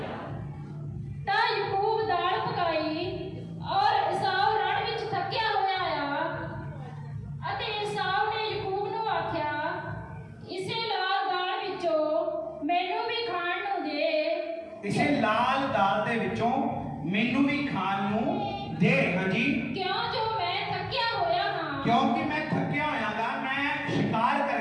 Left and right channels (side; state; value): both; identical; correlation 1.00